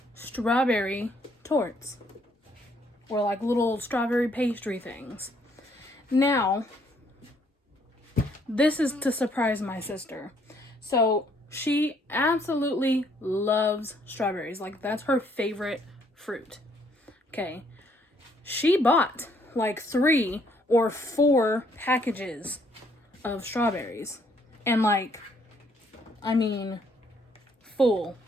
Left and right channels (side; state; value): both; normal; correlation 0.67